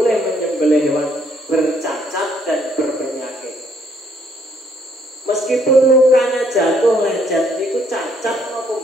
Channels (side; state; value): both; normal; correlation 0.68